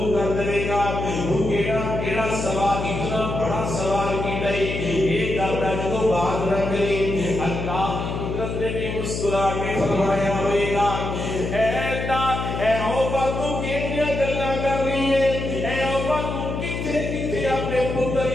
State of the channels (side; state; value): left; noise; hum, 4 dB below the sound